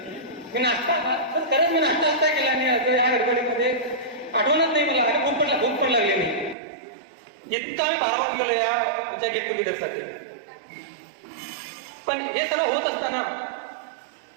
मी नाश्ता खरंच मी नाश्ता केला नाही आज या गडबडीमध्ये आठवणच नाही मला. आणि भूक पण लागली नाही. इतका मी भारावून गेलो या तुमच्या गेट टुगेदरसाठी. पण हे सर्व होत असताना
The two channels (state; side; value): drops out; left; at 6.6 s